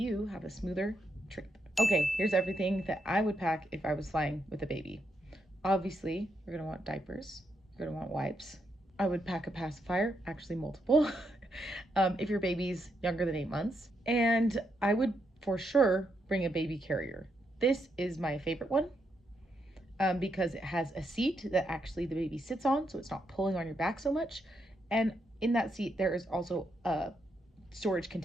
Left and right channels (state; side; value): normal; both; correlation 0.80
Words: have a smoother trip. Okay, here's everything that I would pack if I was flying with a baby. Obviously, you're gonna want diapers, you're gonna want wipes. I would pack a pacifier, actually multiple, if your baby's younger than 8 months. And I would for sure bring a baby carrier. This is my favorite one because it has a seat that actually the baby sits on, so it's not pulling on your back so much. And in that seat, there is also a storage